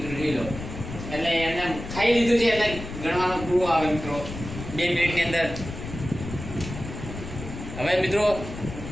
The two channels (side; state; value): left; noise; rumble, 9 dB below the sound